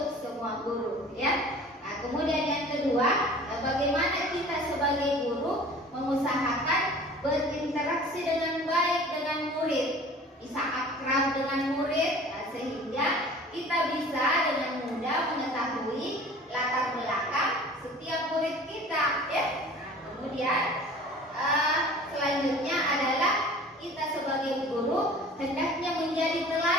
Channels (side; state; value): both; normal; correlation 0.45